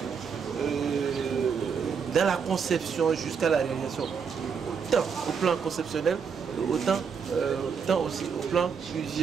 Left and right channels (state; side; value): quieter; left; 6.3 dB